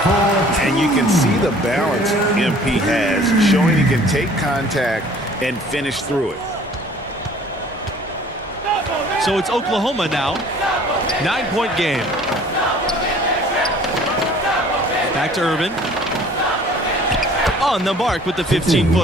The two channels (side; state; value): both; normal; correlation 0.52